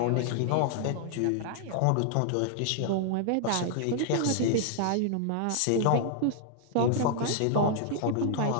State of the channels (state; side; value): different; both; correlation -0.01